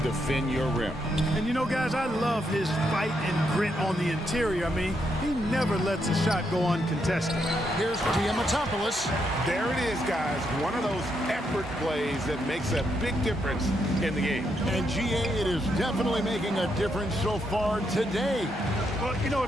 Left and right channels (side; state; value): both; normal; correlation 0.79